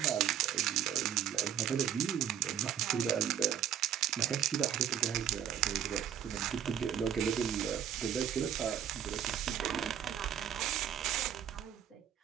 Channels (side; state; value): left; quieter; 9.6 dB